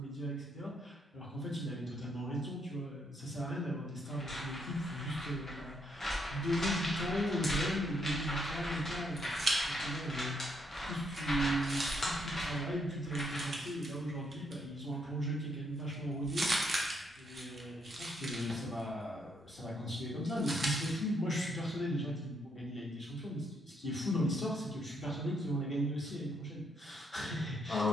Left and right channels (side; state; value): both; normal; correlation 0.74